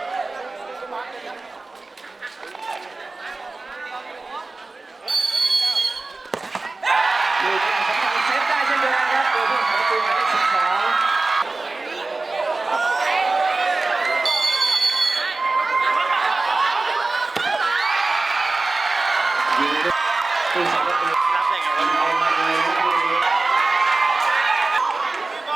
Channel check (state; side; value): quieter; left; 3.5 dB